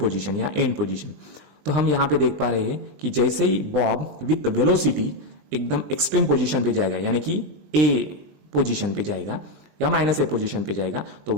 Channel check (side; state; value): left; late; 20 ms